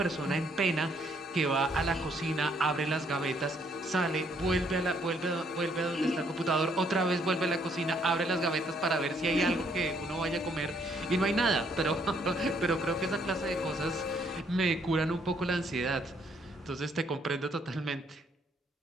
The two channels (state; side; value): normal; both; correlation 0.68